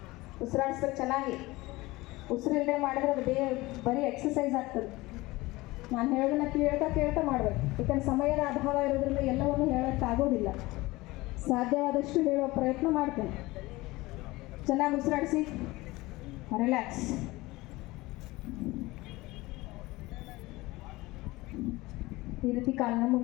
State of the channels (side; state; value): right; quieter; 20.5 dB